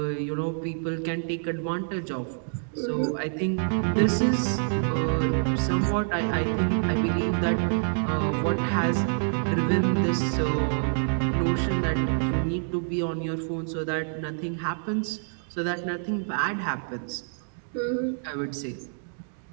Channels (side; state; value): left; silent; digital silence